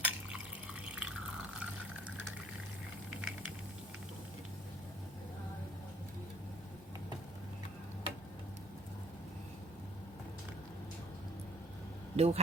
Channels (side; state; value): both; normal; correlation 0.53